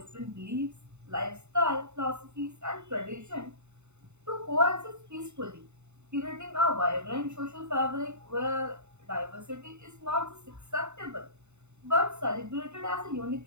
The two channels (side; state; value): left; late; 0.82 ms